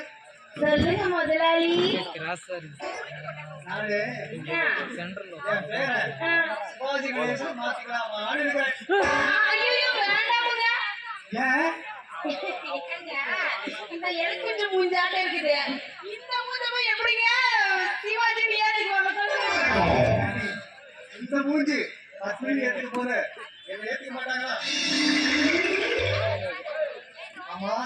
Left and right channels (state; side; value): identical; both; correlation 1.00